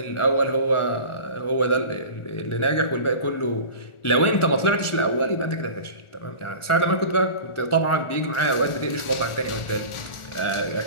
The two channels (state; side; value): late; right; 1.4 ms